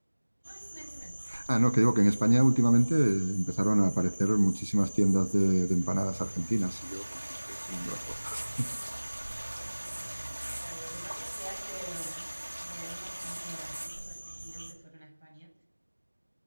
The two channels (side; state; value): both; inverted; correlation -1.00